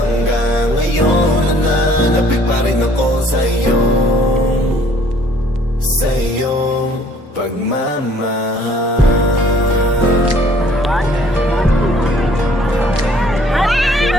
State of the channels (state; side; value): normal; both; correlation 0.58